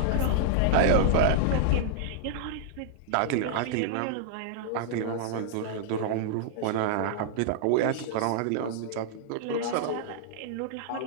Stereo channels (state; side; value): different; both; correlation -0.01